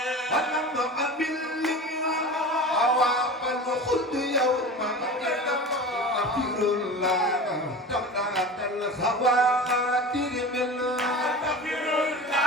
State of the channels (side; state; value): both; normal; correlation 0.33